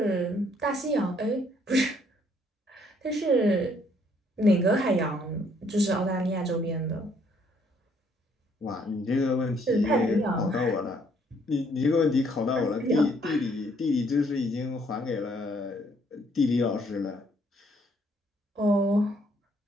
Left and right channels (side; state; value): both; normal; correlation 0.66